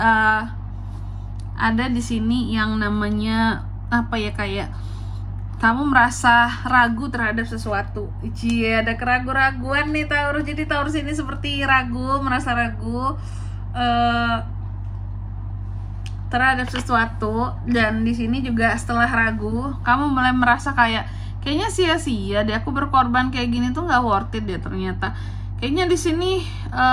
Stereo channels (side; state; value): both; identical; correlation 1.00